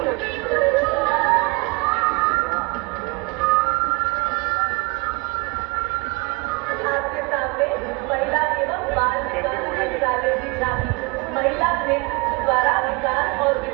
आपके सामने महिला एवं बाल विकास मंत्रालय की झांकी, महिला नेतृत्व द्वारा विकास और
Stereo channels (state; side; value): quieter; left; 28.4 dB